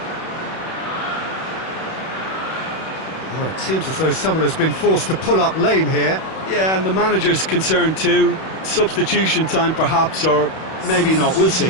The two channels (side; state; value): right; late; 31 ms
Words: Oh, it seems as though someone has been forced to pull up lame here. Yeah, and the manager's concerned too. Substitution time perhaps, or maybe not, we'll